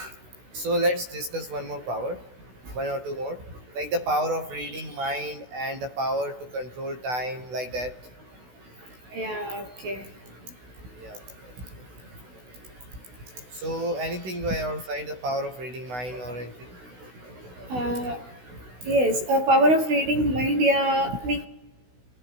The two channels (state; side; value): late; left; 16 ms